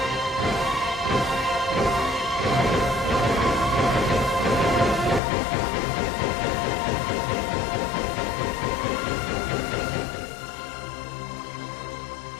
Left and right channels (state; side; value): drops out; right; at 5.2 s